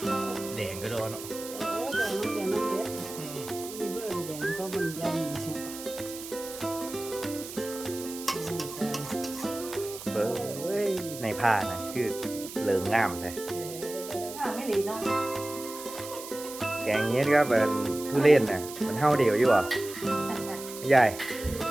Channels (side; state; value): right; noise; hiss, 12 dB below the sound